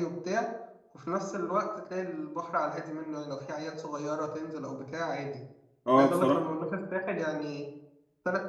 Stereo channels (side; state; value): both; identical; correlation 1.00